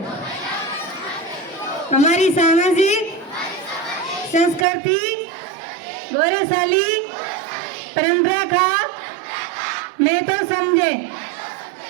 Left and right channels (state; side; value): drops out; left; at 4.7 s